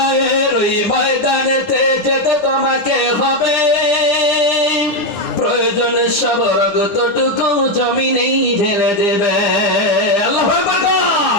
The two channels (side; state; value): right; late; 9.4 ms